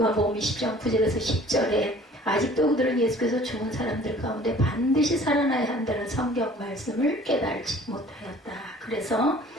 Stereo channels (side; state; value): both; normal; correlation 0.51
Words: 20장 9절에서 10절에 아직도 그들은 예수께서 죽은 사람들 가운데 반드시 살아나야 한다는 성경 말씀을 깨달지 못하였다. 그래서